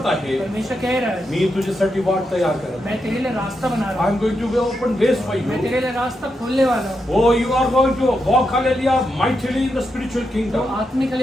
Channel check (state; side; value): normal; both; correlation 0.84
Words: है। आहे परमेश्वर कह रहा है मी तुझ्यासाठी वाट तयार करत. मैं तेरे लिए रास्ता बना रहा आय हूँ। Am going to open ways for मैं यू. तेरे लिए रास्ता खोलने वाला हूँ। Oh, you are going to walk, hallelujah, mightily in the spiritual तो kingdom. आत्मिक